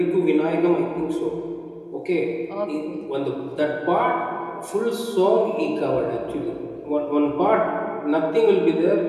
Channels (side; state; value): both; identical; correlation 1.00